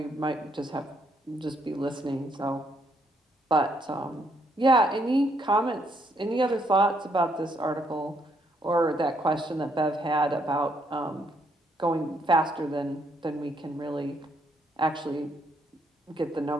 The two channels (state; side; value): normal; both; correlation 0.72